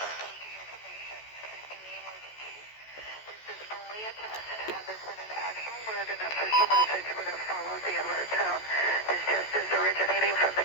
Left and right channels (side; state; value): right; late; 14 ms